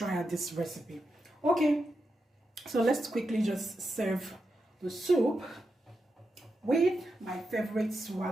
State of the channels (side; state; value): both; normal; correlation 0.87